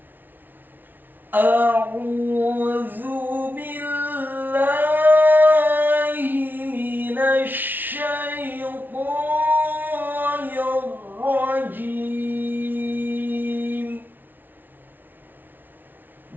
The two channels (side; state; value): left; late; 0.089 ms